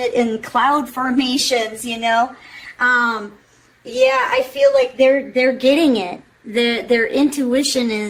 it in cloud formations, you know? Yeah, I feel like they're getting it. Their intuition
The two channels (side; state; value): both; identical; correlation 1.00